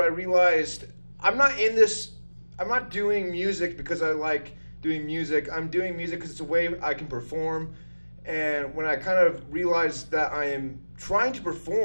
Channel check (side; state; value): both; inverted; correlation -1.00